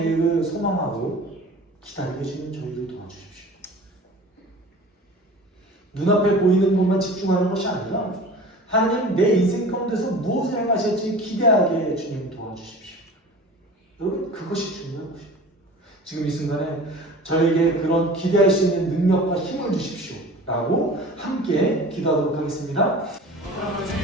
소망하고 기다리게 해주는 저희를 도와주십시오. 눈앞에 보이는 것만 집중하는 것이 아니라 하나님 내 인생 가운데서 무엇을 행하실지 기대하게 주님 도와주십시오. 여러분 그것이 중요한 것이에요. 지금 이 순간에 저에게 그런 기대할 수 있는 능력과 힘을 주십시오 라고 함께 기도하도록 하겠습니다.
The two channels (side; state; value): both; normal; correlation 0.40